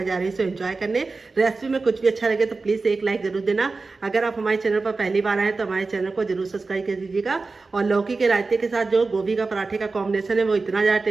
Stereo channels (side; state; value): left; quieter; 3.9 dB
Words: जा रही हूँ एंजॉय करने। रेसिपी में कुछ भी अच्छा लगे तो प्लीज़ एक लाइक जरूर देना। अगर आप हमारे चैनल पर पहली बार आए तो हमारे चैनल को जरूर सब्सक्राइब कर दीजिएगा। और लौकी के रायते के साथ जो गोभी का पराठे का कॉम्बिनेशन है वो इतना ज़्यादा